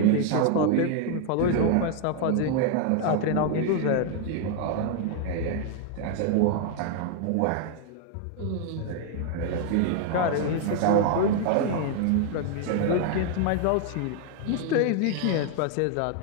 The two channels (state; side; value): different; both; correlation 0.00